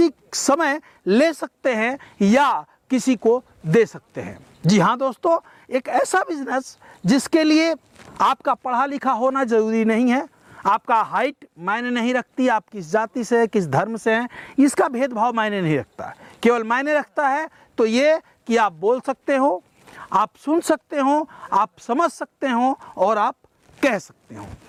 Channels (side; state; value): both; identical; correlation 1.00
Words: समय ले सकते हैं या किसी को दे सकते हैं। जी हाँ दोस्तों, एक ऐसा बिजनेस जिसके लिए आपका पढ़ा लिखा होना जरूरी नहीं है, आपका हाइट मायने नहीं रखती, आप किस जाति से, किस धर्म से हैं, इसका भेदभाव मायने नहीं रखता। केवल मायने रखता है तो ये कि आप बोल सकते हो, आप सुन सकते हो, आप समझ सकते हो और आप कह सकते हो।